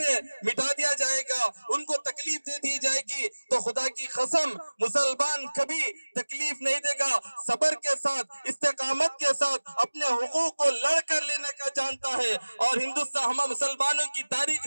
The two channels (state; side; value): inverted; both; correlation -1.00